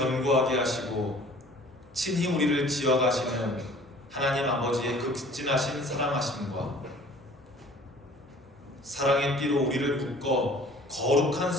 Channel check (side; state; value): both; normal; correlation 0.50